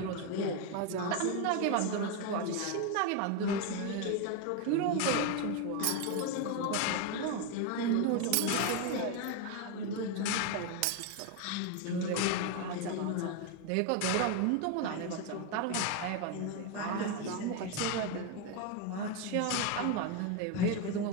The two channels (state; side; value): different; both; correlation 0.02